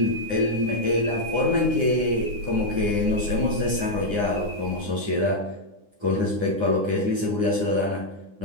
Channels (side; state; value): left; late; 9.8 ms